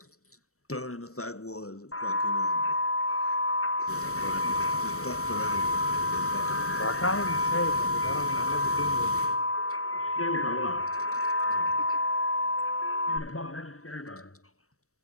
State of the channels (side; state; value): right; late; 0.64 ms